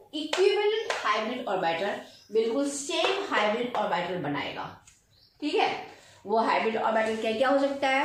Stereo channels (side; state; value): both; identical; correlation 1.00